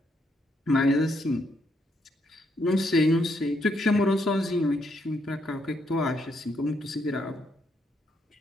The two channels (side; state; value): both; normal; correlation 0.75